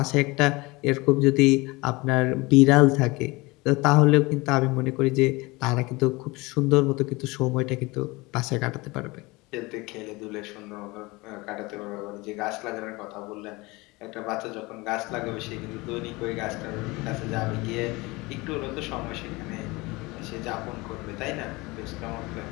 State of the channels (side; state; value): right; quieter; 23.4 dB